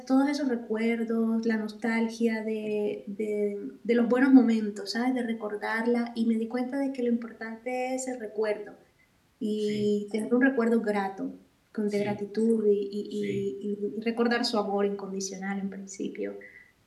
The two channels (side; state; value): both; identical; correlation 1.00